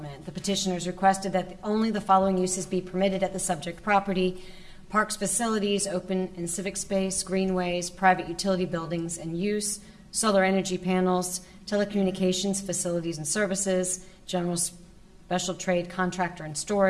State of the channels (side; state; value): both; identical; correlation 1.00